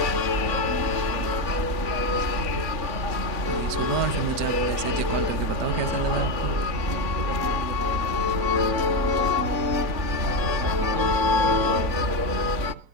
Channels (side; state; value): left; late; 3.6 ms